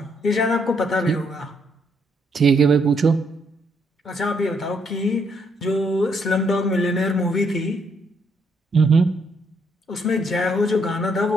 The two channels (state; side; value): normal; both; correlation 0.72